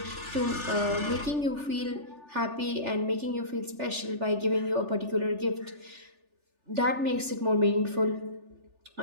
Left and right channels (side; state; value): left; late; 3.4 ms